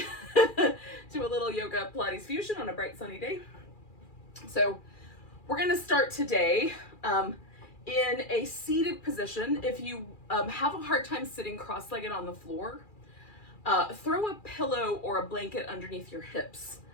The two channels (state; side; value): late; right; 2.4 ms